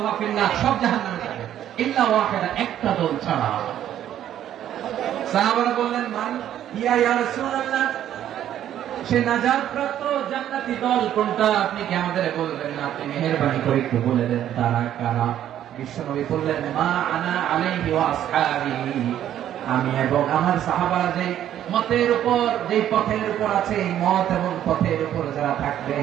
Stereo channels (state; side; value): quieter; left; 11.1 dB